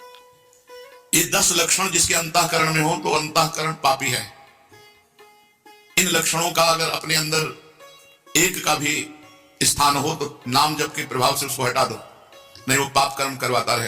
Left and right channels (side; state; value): both; identical; correlation 1.00